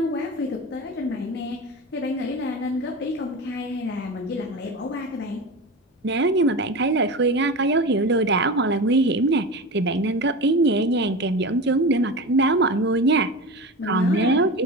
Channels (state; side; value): normal; both; correlation 0.27